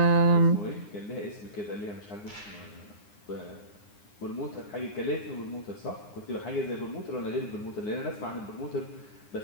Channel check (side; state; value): right; late; 9.8 ms